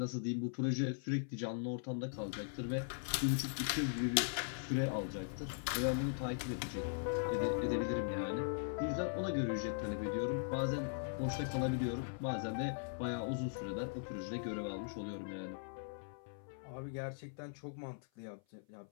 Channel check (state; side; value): silent; right; 51 dB below the other